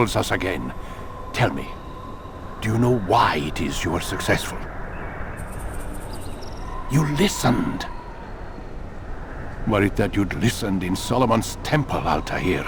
us again. Tell me, do you know why it is you were successful? You listened. Were it that you'd listened in Solomon's temple, Altair,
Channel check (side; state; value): both; identical; correlation 1.00